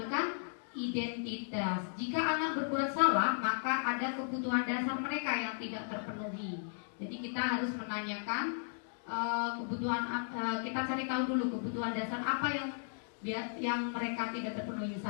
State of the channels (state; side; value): silent; right; digital silence